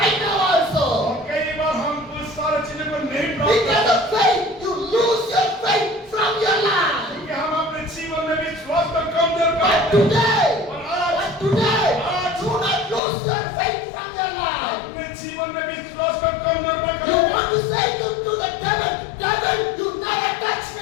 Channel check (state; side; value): drops out; right; at 13.0 s